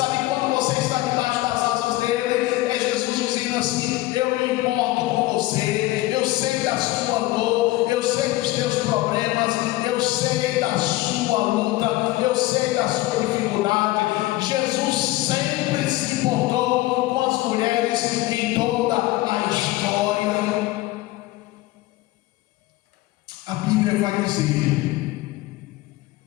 quando você está debaixo das asas dele, é Jesus dizendo assim: eu me importo com você, eu sei da sua dor, eu sei dos teus problemas, eu sei da sua luta, eu sei da sua dificuldade. Jesus sempre se importou com as mulheres em toda a história. A Bíblia vai dizer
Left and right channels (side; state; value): right; quieter; 18.2 dB